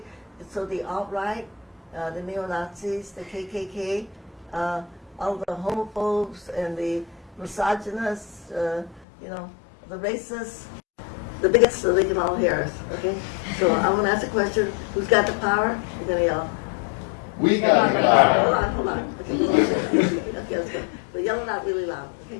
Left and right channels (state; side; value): drops out; right; at 9.1 s